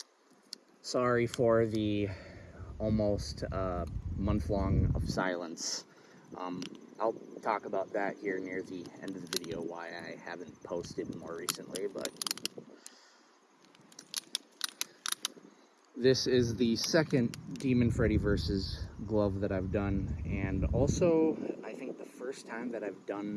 Sorry for the almost month long of silence. I'll talk about that here near the end of the video, why I haven't posted more recently, but this is the second Demon Freddy versus glove that I've done, and also I think the first time that I've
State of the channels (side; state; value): both; identical; correlation 1.00